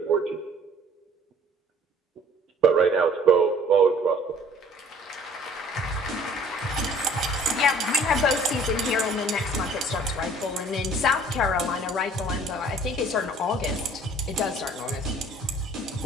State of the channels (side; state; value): both; normal; correlation 0.54